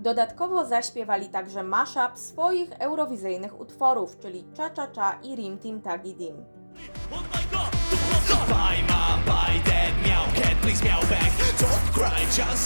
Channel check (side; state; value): both; inverted; correlation -1.00